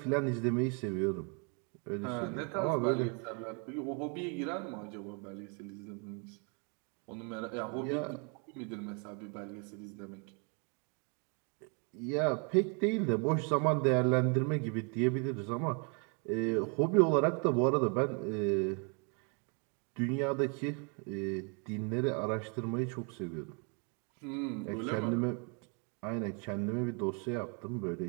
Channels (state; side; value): quieter; left; 36.5 dB